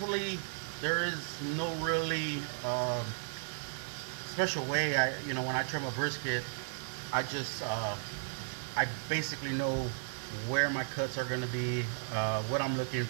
there is no really special way. When I trim a brisket, I just I basically know where my cuts are going to be, what I'm looking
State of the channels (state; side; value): silent; left; 55 dB below the other